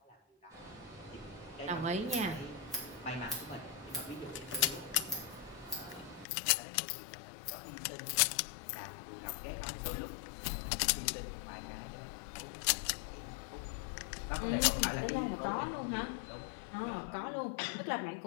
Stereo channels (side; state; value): right; drops out; at 6.2 s